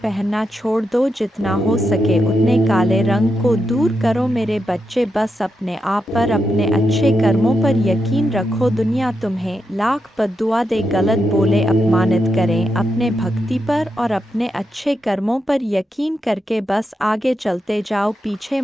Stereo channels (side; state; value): both; normal; correlation 0.85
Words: छोड़ दो। जितना हो सके उतने काले रंग को दूर करो मेरे बच्चे। बस अपने आप पर, अपने अच्छे कर्मों पर यकीन रखो। दुनिया तुम्हें लाख बद्दुआ दे, गलत बोले, अपमानित करें, अपने भक्ति पर और अपने अच्छे कर्मों पर यकीन करके बस आगे चलते जाओ, पीछे